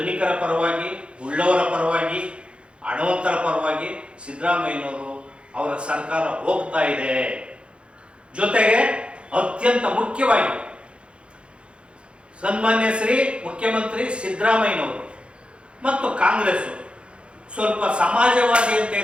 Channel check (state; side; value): late; left; 0.058 ms